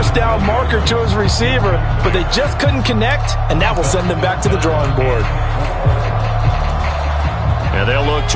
down marker to his receiver, but they just couldn't connect, and that will send them back to the drawing board. And they'll look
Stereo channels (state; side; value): identical; both; correlation 1.00